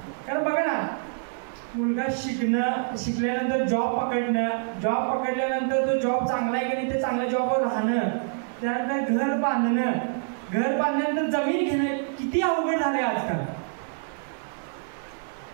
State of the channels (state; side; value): silent; left; digital silence